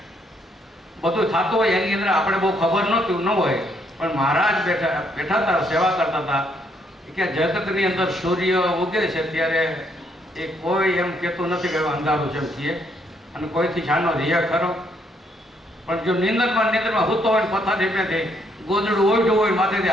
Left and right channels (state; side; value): normal; both; correlation 0.71